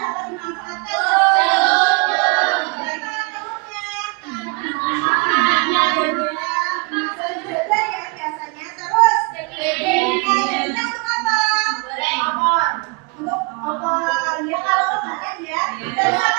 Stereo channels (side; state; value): left; quieter; 30.3 dB